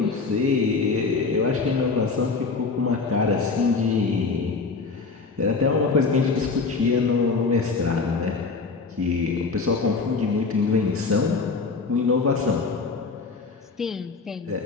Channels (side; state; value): right; quieter; 4.4 dB